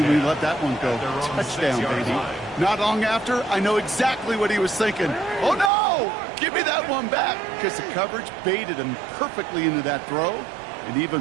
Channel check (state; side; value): drops out; left; at 5.7 s